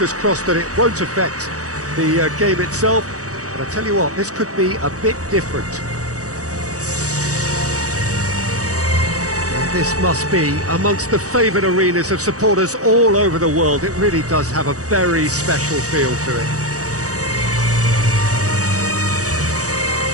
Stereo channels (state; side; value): late; left; 0.66 ms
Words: crossed that it won't affect the game itself, but I tell you what, this could be a bit different. And this must be amongst the favoured arenas of supporters all over the world. It really does have a very special feel to it.